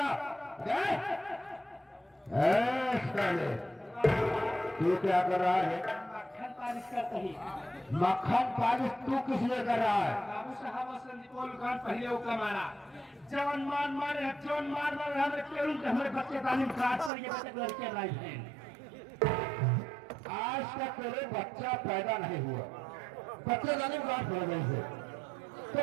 तू क्या कर रहा है? मक्खन पालिश करता ही। मक्खन पालिश तू किस लिए कर रहा है? बाबू साहब संदीपोल खान पहले उका मारा जवन मार मारे जवन मार मारे हमें केवल हमारे बच्चे तालीम काट पर ये बच्चे लड़के लाई हैं। आज तक तेरे बच्चा पैदा नहीं हुआ, बच्चे तालीम काट हो गए थे तो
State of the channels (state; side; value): drops out; left; at 17.1 s